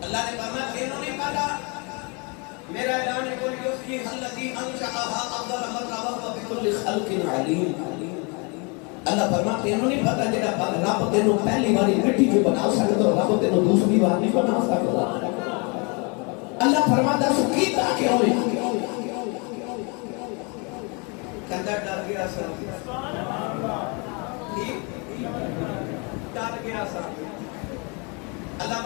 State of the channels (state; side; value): quieter; right; 32.2 dB